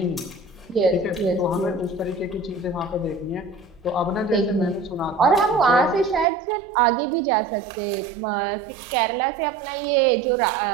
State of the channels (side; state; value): left; drops out; at 6.2 s